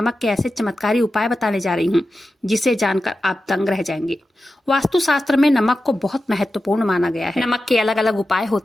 के ऐसे चमत्कारी उपाय बताने जा रही हूँ जिसे जानकर आप दंग रह जाएंगे। वास्तुशास्त्र में नमक को बहुत महत्वपूर्ण माना गया है। नमक के अलग अलग उपाय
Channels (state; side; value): normal; both; correlation 0.92